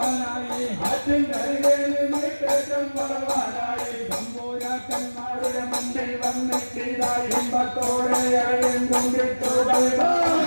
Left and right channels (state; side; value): inverted; both; correlation -1.00